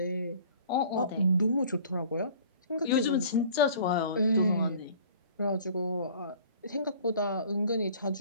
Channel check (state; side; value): inverted; both; correlation -0.49